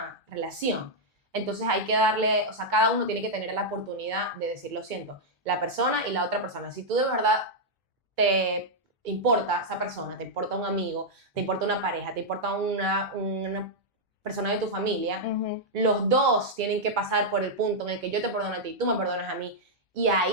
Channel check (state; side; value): normal; both; correlation -0.04